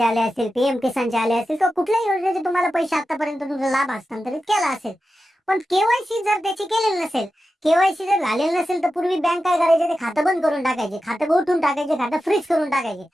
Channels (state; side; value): normal; both; correlation 0.91